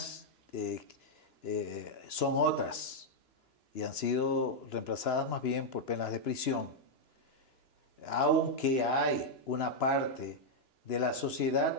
son otras y han sido reemplazadas más bien por penas de prisión. aunque hay una parte de la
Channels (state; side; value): late; right; 2.9 ms